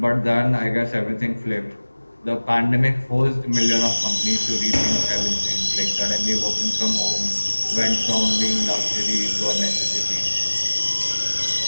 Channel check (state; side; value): inverted; both; correlation -1.00